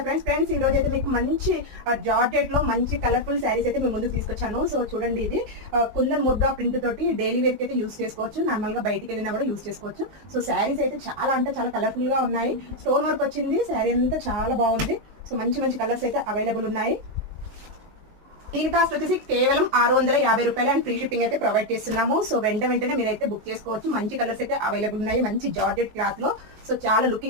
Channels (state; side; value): late; left; 19 ms